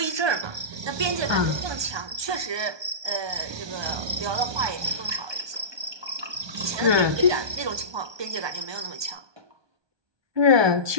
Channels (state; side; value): late; left; 1.2 ms